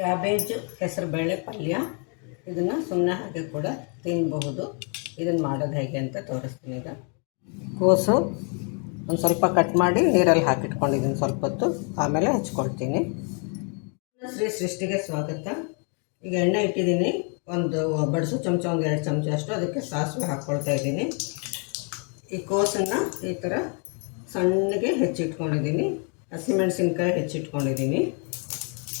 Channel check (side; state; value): right; quieter; 39.0 dB